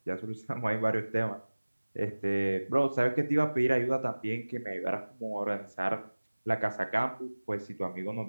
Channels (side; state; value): both; inverted; correlation -1.00